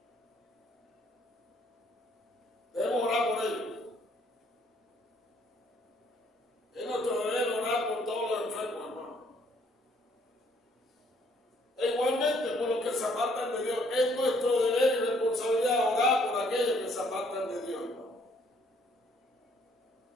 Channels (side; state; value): both; normal; correlation 0.65